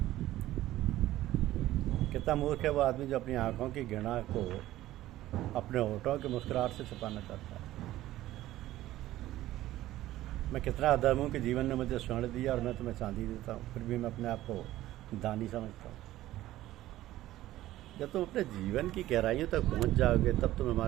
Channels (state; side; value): quieter; left; 15.1 dB